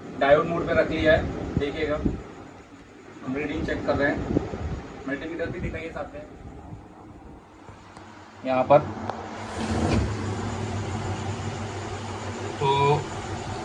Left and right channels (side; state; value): both; identical; correlation 1.00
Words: डायोड मोड पे रख लिया है, देखिएगा हम रीडिंग चेक कर रहे हैं। मल्टीमीटर भी दिखाइए साथ में यहाँ पर। तो